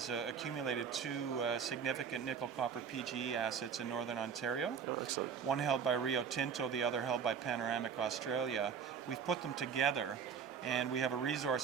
accumulated two significant nickel copper PGE assets in Northern Ontario. Oh, excellent. One held by Rio Tinto, the other held by Panoramic Australia. We've put them together, and we have a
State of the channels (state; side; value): quieter; left; 6.8 dB